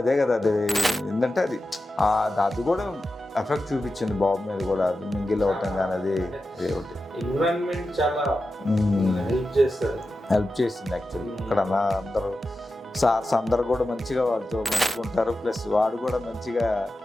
అదే కదా, అది ఏంటంటే అది కూడా ఎఫెక్ట్ చూపించింది బాబు మీద కూడా. అది మింగిల్ అవటం కానీ అది ఒకటి హెల్ప్ చేసింది యాక్చువల్లీ. ఇక్కడ అందరూ సార్స్ అందరు కూడా మంచిగా వాడితో మంచిగా ఉంటారు. ప్లస్ వాడు కూడా మంచిగా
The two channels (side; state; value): both; normal; correlation 0.92